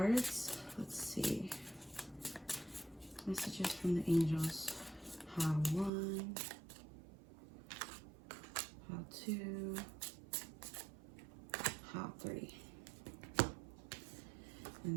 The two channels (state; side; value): drops out; left; at 5.9 s